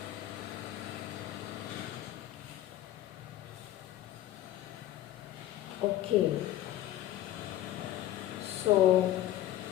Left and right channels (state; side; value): quieter; right; 13.6 dB